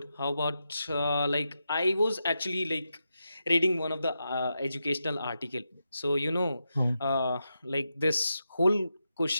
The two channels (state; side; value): inverted; both; correlation -0.87